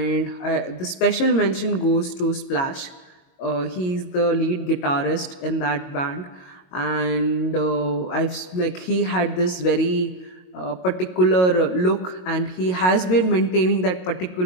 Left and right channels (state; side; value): late; right; 22 ms